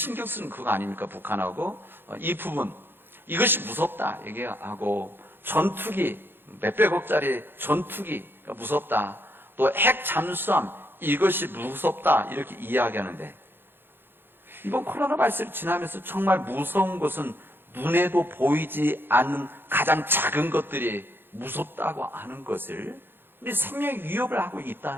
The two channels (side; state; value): left; late; 0.10 ms